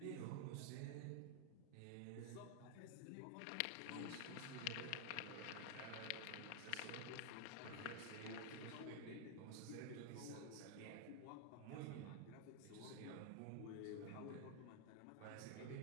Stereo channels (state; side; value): different; both; correlation 0.00